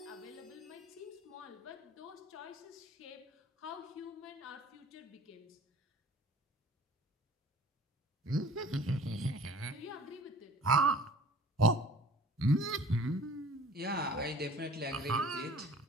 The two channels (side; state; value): both; normal; correlation 0.47